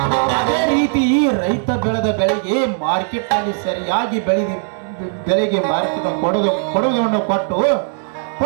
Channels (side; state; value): left; silent; digital silence